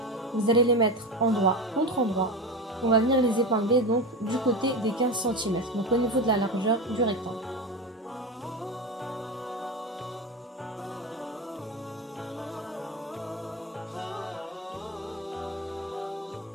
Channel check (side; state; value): both; normal; correlation 0.22